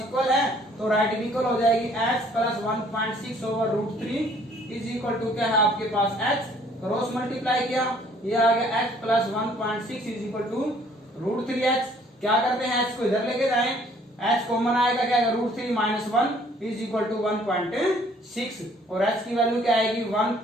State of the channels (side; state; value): both; normal; correlation 0.59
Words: है तो राइट इक्वल हो जाएगी H plus 1.6 over √3 is equal to क्या है आपके पास H, क्रॉस मल्टीप्लाई किया, ये आ गया H plus 1.6 is equal to √3H। क्या करते हैं H को इधर लेके जाएं, H कॉमन आएगा क्या आएगा √3 माइनस 1 इज इक्वल टू 1.6, और H की वैल्यू क्या आएगी